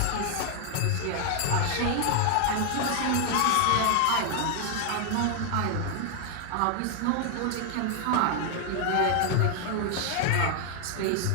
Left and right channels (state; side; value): different; both; correlation 0.00